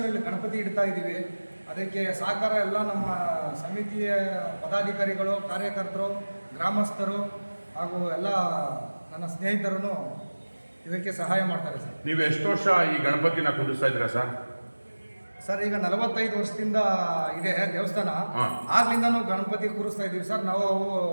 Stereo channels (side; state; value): both; inverted; correlation -1.00